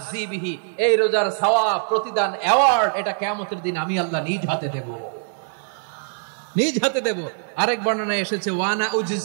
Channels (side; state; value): left; silent; 63 dB below the other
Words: বিহি, এই রোজার সওয়াব, প্রতিদান, অ্যাওয়ার্ড, এটা কিয়ামতের দিন আমি আল্লাহ নিজ হাতে দেব, নিজ হাতে দেব। আরেক বর্ণনায় এসেছে, ওয়া আনা